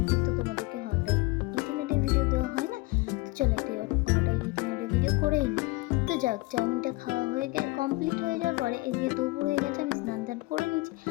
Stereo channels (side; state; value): right; quieter; 22.3 dB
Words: তো তোমাদেরকে হঠাৎ 18 ভিডিও দেওয়া হয় না, তো চলো একটা হঠাৎ 18 ভিডিও করেই নিই। তো যাক, চাউমিনটা খাওয়া হয়ে কমপ্লিট হয়ে যাওয়ার পরে এদিকে দুপুর হয়ে গেছে, আমি স্নান টান করে নিয়েছি।